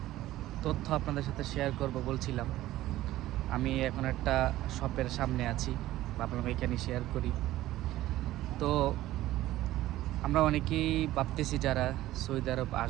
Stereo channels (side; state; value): left; quieter; 15.3 dB